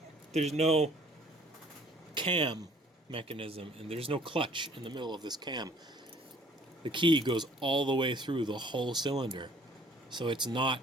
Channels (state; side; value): normal; both; correlation 0.57